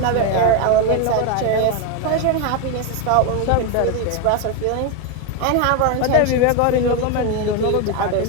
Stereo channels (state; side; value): different; both; correlation 0.02